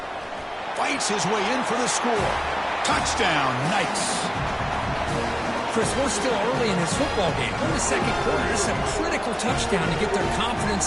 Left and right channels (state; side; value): identical; both; correlation 1.00